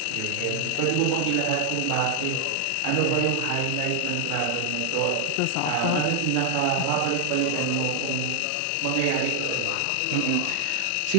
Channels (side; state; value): both; different; correlation 0.00